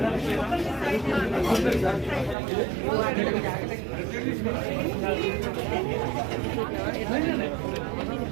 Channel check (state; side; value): drops out; left; at 2.4 s